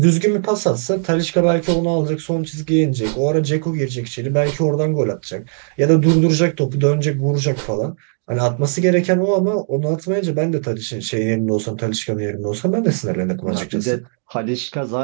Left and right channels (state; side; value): silent; left; digital silence